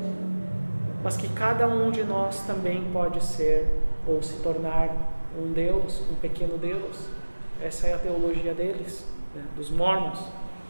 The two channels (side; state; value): both; inverted; correlation -1.00